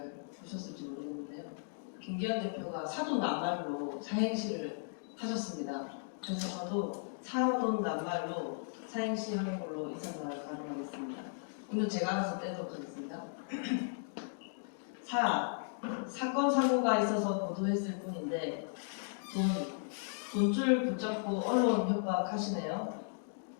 보셨을지 모르겠는데요. 김기현 대표가 사돈 낱말로 사행시를 하셨습니다. 그래서 저도 사돈 낱말로 사행시 하는 걸로 인사말을 가동하겠습니다. 오늘 제가 알아서 떼도록 하겠습니다. 사건 사고가 있어서 보도했을 뿐인데 돈줄 붙잡고 언론 협박하시네요.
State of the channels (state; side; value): silent; right; digital silence